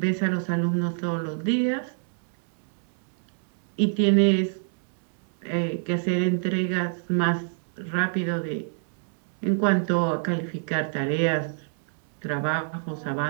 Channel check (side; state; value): left; silent; digital silence